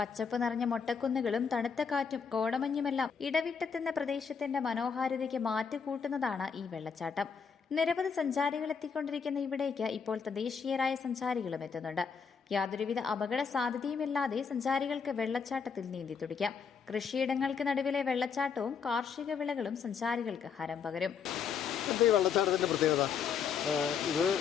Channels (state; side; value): quieter; right; 6.4 dB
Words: നിറഞ്ഞ മൊട്ടക്കുന്നുകളും തണുത്ത കാറ്റും കോടമഞ്ഞുമെല്ലാം ഇടവിട്ടെത്തുന്ന പ്രദേശത്തിന്റെ മനോഹാരിതയ്ക്ക് മാറ്റുകൂട്ടുന്നതാണ് ഈ വെള്ളച്ചാട്ടം. നിരവധി സഞ്ചാരികൾ എത്തിക്കൊണ്ടിരിക്കുന്ന ഇവിടേക്ക് ഇപ്പോൾ തദ്ദേശീയരായ സഞ്ചാരികളും എത്തുന്നുണ്ട്. യാതൊരുവിധ അപകട സാധ്യതയുമില്ലാതെ സഞ്ചാരികൾക്ക് വെള്ളച്ചാട്ടത്തിൽ നീന്തി തുടിക്കാം. കൃഷിയിടങ്ങൾക്ക് നടുവിലെ വെള്ളച്ചാട്ടവും കാർഷിക വിളകളും സഞ്ചാരികൾക്ക് ഹരം പകരും. ഈ വെള്ളച്ചാട്ടത്തിൻ്റെ പ്രത്യേകത ഇത്